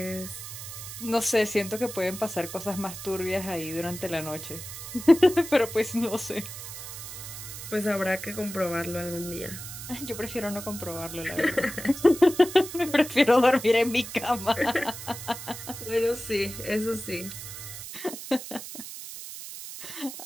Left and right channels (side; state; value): right; noise; hiss, 10 dB below the sound